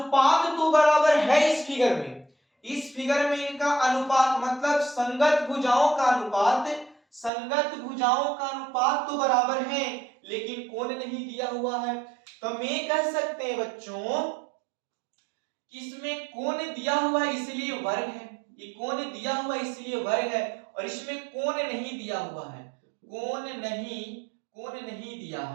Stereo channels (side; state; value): left; drops out; at 7.3 s